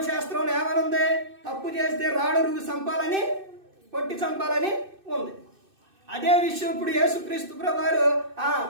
ఏమనుంది? తప్పు చేస్తే రాడు రువ్వు చంపాలని, కొట్టి చంపాలని ఉంది. అదే విషయం ఇప్పుడు యేసుక్రీస్తు ప్రభువారు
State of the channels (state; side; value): late; left; 2.6 ms